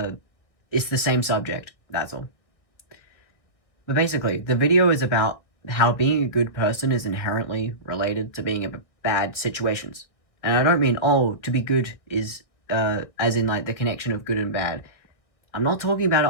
it's the same subject, that's all. But basically, the video is about how being a good person is inherently related to being in bad situations. And I don't mean, oh, to be good is, as in, like, the connection of good and bad. I'm not talking about it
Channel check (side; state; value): right; late; 1.7 ms